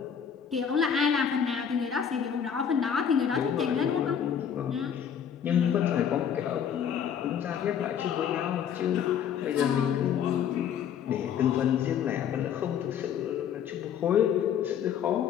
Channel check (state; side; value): quieter; right; 8.2 dB